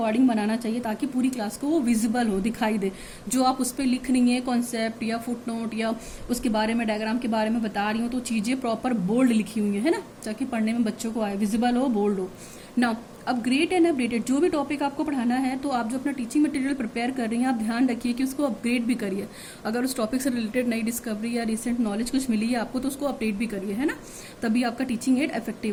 बनाना चाहिए, ताकि पूरी क्लास को वो विजिबल हो, दिखाई दे। जो आप उस पर लिख रही हैं कॉन्सेप्ट या फुट नोट या उसके बारे में, डायग्राम के बारे में बता रही हूँ, तो चीज़ें प्रॉपर बोल्ड लिखी हुई है ना, ताकि पढ़ने में बच्चों को आए, विजिबल हो, बोल्ड हो। नाउ अपग्रेड एंड अपडेटेड, जो भी टॉपिक आपको पढ़ाना है, तो आप जो अपना टीचिंग मटेरियल प्रिपेयर कर रही हैं, आप ध्यान रखिए कि उसको अपग्रेड भी करिए। अगर उस टॉपिक से रिलेटेड नई डिस्कवरी या रिसेंट नॉलेज कुछ मिली है आपको, तो उसको अपडेट भी करिए, है ना, तभी आपका टीचिंग एड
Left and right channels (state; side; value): identical; both; correlation 1.00